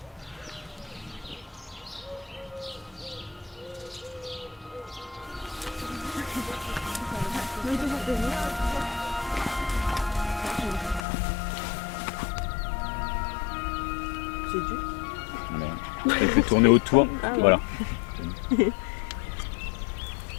C'est dur. Elle peut tourner autour, Ah oui. voilà.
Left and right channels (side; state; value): right; drops out; at 11.1 s